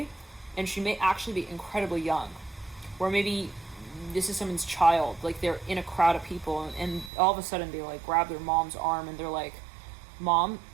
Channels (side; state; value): left; drops out; at 7.1 s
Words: and she may actually be incredibly young, or maybe this is someone's child. Like they're in a crowd of people, and all of a sudden they like grab their mom's arm and they're like, "Mom,